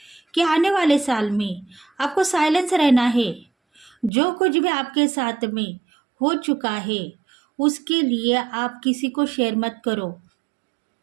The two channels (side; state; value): left; drops out; at 4.1 s